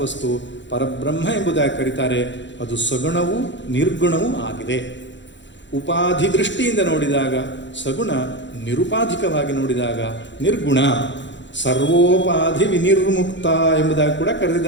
ವಸ್ತು, ಪರಬ್ರಹ್ಮ ಎಂಬುದಾಗಿ ಕರೀತಾರೆ. ಅದು ಸಗುಣವೂ ನಿರ್ಗುಣವೂ ಆಗಿದೆ. ಉಪಾಧಿ ದೃಷ್ಟಿಯಿಂದ ನೋಡಿದಾಗ ಸಗುಣ, ನಿರುಪಾಧಿಕವಾಗಿ ನೋಡಿದಾಗ ನಿರ್ಗುಣ. ಸರ್ವೋಪಾಧಿ ವಿನಿರ್ಮುಕ್ತ ಎಂಬುದಾಗಿ ಕೂಡ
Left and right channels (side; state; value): right; late; 0.53 ms